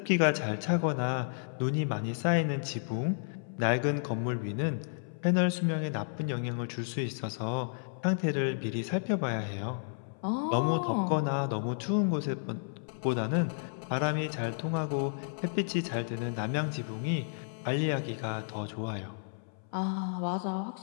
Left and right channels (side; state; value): right; silent; 57 dB below the other